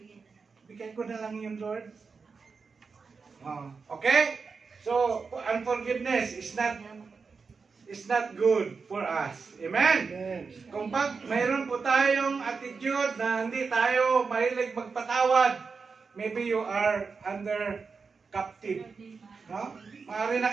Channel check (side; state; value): left; quieter; 5.0 dB